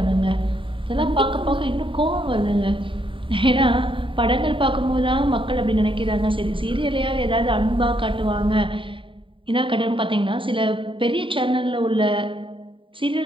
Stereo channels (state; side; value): late; left; 0.25 ms